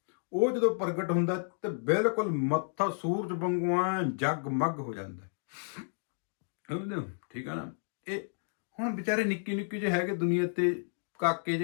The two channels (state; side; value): silent; right; digital silence